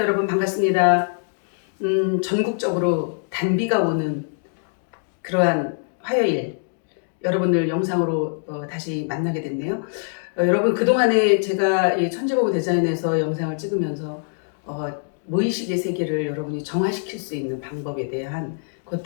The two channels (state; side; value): silent; right; digital silence